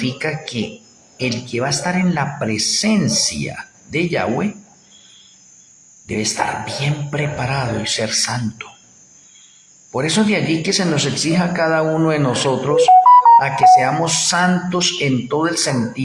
que el que va a estar en la presencia de Yahweh debe estar bien preparado y ser santo. Por eso de allí que se nos exija a cada uno de nosotros a que seamos santos en todo el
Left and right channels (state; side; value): identical; both; correlation 1.00